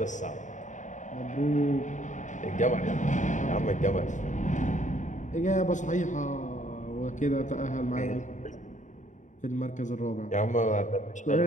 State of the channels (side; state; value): right; late; 0.36 ms